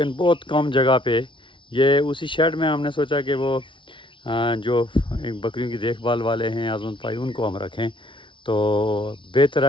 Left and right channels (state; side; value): late; right; 0.24 ms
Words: बहुत कम जगह पे ये उसी शेड में हमने सोचा कि वो जो बकरियों की देखभाल वाले हैं आज़मत भाई, उनको हम रखें। तो बेहतर